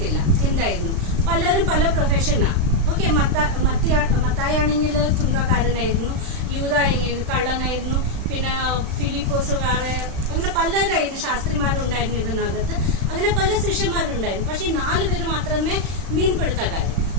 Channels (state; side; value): late; left; 36 ms